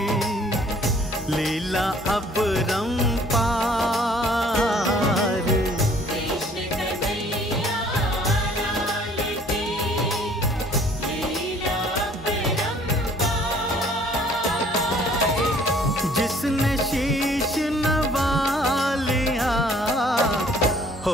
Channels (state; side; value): normal; both; correlation 0.57